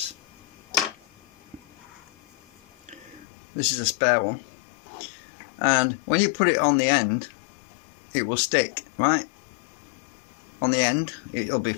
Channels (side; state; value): right; drops out; at 3.2 s